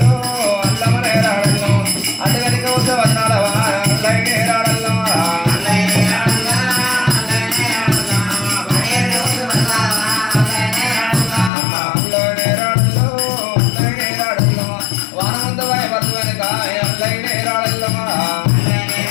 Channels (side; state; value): right; drops out; at 11.5 s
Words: అల్లమనే రాడల్లో అటుగడిక వద్ద వచనాల వాన అల్లైనే రాడల్లో అల్లైనే రాడల్లో అల్లైనే రాడల్లో వాన ముందు వాయి బతుకు వెనుక అల్లైనే రాడల్లో